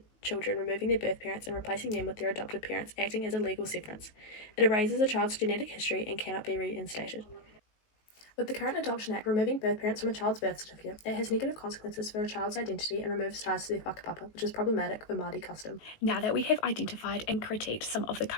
children, removing their birth parents and replacing them with their adopted parents, acting as a legal severance. It erases a child's genetic history and cannot be reinstated. With the current Adoption Act removing birth parents from a child's birth certificate, it has negative consequences for a child's identity and removes ties to their whakapapa, which is problematic for Māori custom. Now that we have identified and critiqued some of the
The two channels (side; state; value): right; late; 19 ms